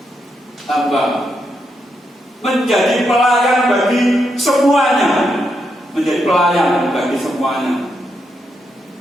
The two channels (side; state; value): both; normal; correlation 0.81